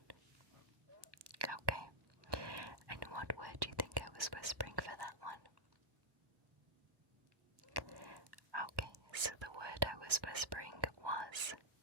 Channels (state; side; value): late; left; 1.2 ms